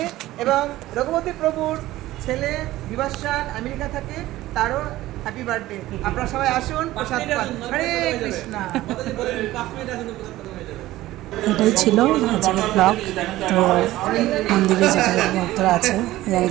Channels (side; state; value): left; quieter; 16.2 dB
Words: এবং রঘুপতি প্রভুর ছেলে বিভাসান আমেরিকা থাকে, তারও হ্যাপি বার্থডে। আপনারা সবাই আসুন, প্রসাদ পান। হরে কৃষ্ণ। এটাই ছিল আজকের ব্লগ। তো মন্দিরে যেটা ভক্তরা আছে, ইয়াং